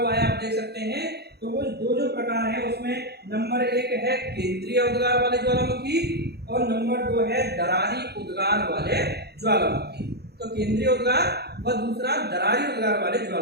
है आप देख सकते हैं। तो वो दो जो प्रकार है उसमें नंबर 1 है केंद्रीय उद्गार वाले ज्वालामुखी और नंबर 2 है दरारी उद्गार वाले ज्वालामुखी। तो केंद्रीय उद्गार व दूसरा दरारी उद्गार वाले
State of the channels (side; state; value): left; late; 0.47 ms